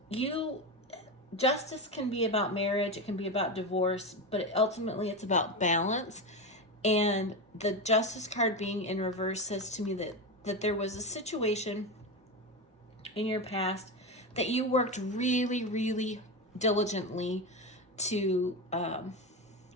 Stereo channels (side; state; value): both; normal; correlation 0.17